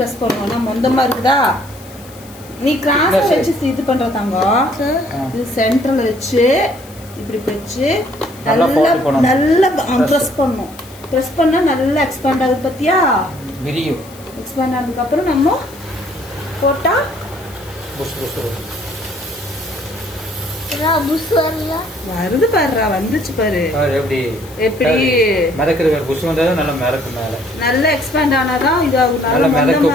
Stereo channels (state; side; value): noise; left; hiss, 21 dB below the sound